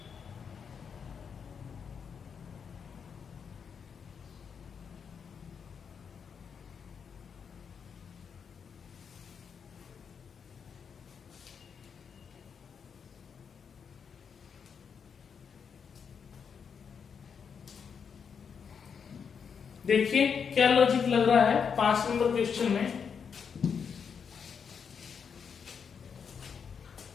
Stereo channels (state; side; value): quieter; right; 6.6 dB